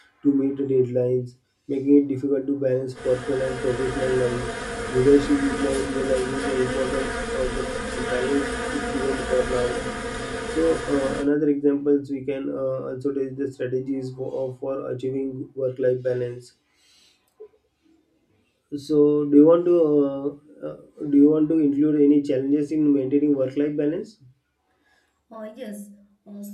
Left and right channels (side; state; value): both; identical; correlation 1.00